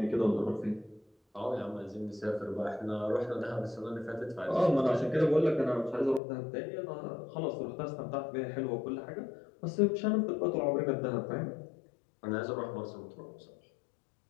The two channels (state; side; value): drops out; right; at 6.2 s